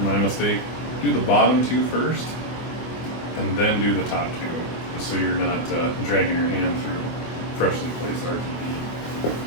my mistake, do the bottom two first and then do the top two, just so you're not dragging your hand through freshly placed RTV.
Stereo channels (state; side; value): late; right; 24 ms